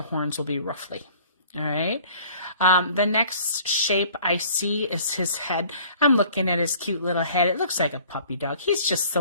horns will be roughly. All right. The next shape I see is his head. I'm looking at his cute little head. It looks like a puppy dog. He's just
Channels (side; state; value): both; inverted; correlation -0.52